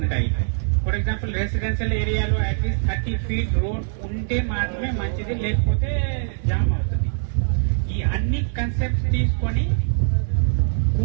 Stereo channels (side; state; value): left; silent; digital silence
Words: ఫర్ ఎగ్జాంపుల్ రెసిడెన్షియల్ ఏరియాలో అట్లీస్ట్ 30 feet రోడ్ ఉంటే మాత్రమే మంచిది, లేకపోతే జామ్ అవుతుంది. ఈ అన్ని కన్సెప్ట్స్ తీసుకొని